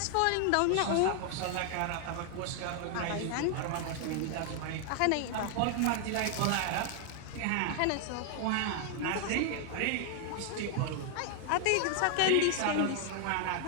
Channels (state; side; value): different; both; correlation 0.00